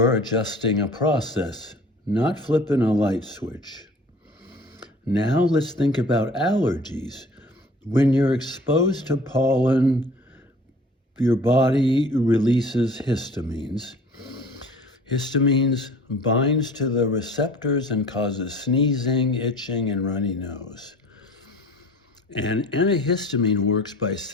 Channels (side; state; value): both; normal; correlation 0.46